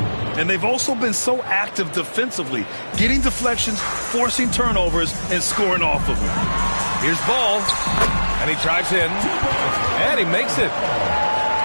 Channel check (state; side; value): inverted; both; correlation -1.00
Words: And they've also been so active defensively, getting deflections, forcing turnovers, and scoring off of them. Here's Ball, and he drives in, and he makes it.